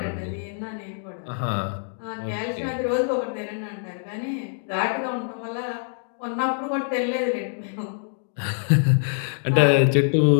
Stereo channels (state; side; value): silent; right; digital silence